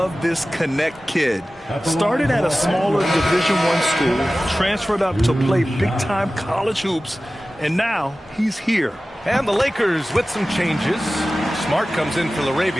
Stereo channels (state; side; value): normal; both; correlation 0.96